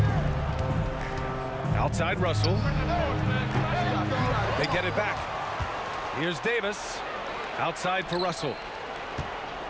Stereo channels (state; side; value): identical; both; correlation 1.00